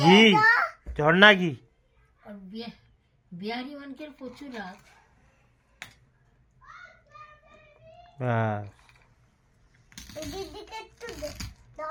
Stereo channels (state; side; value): identical; both; correlation 1.00